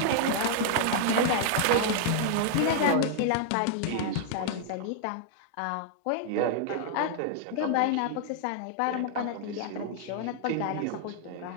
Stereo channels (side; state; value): both; different; correlation 0.00